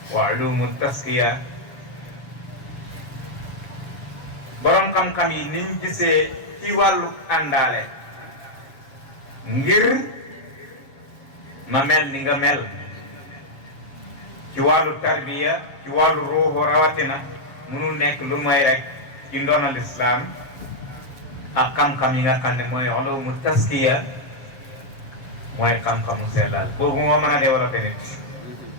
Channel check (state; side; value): late; right; 7.3 ms